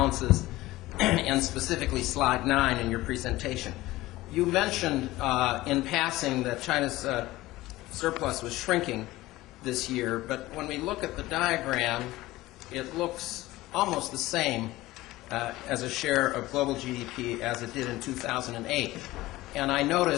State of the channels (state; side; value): quieter; right; 17.9 dB